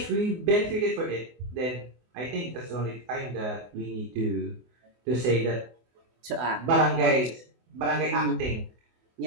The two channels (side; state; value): left; late; 24 ms